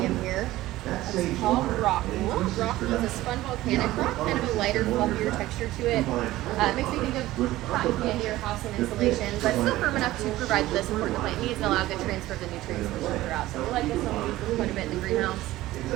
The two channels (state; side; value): quieter; left; 16.4 dB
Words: here. It's called rockwool. Rockwool is a spun volcanic rock, kind of a lighter, fluffier texture to it. It makes me think of cotton candy or house and insulation, but still firm enough to provide the support the plant needs and allow good transfer of the nutrients throughout. So we like this one. We use this quite a bit in the greenhouse.